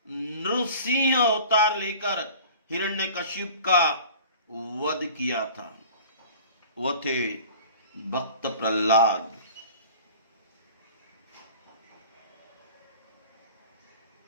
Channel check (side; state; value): both; inverted; correlation -0.44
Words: नृसिंह अवतार लेकर हिरण्यकशिप का वध किया था। वह थे भक्त प्रहलाद।